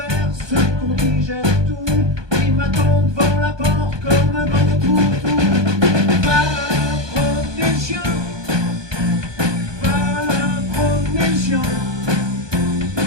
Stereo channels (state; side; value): late; left; 1.2 ms